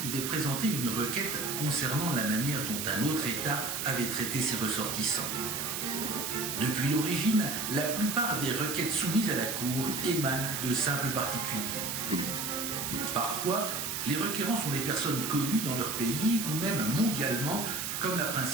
présenter une requête concernant la manière dont un autre État avait traité ses ressortissants. Depuis l'origine, la plupart des requêtes soumises à la Cour émanent de simples particuliers. Parfois, les requérants sont des personnes connues dans leur pays ou même mondialement, comme la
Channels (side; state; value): right; noise; hiss, 3 dB below the sound